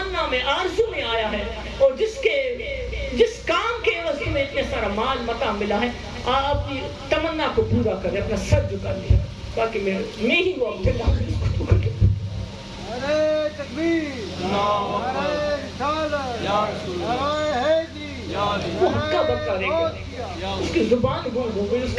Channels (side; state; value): both; identical; correlation 1.00